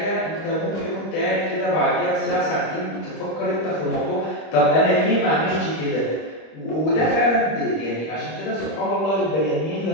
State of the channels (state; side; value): late; right; 25 ms